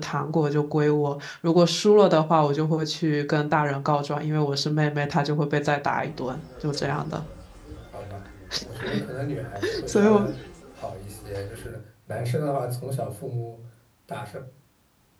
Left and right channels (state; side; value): identical; both; correlation 1.00